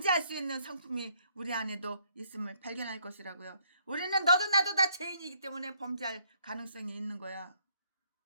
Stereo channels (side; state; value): both; inverted; correlation -0.68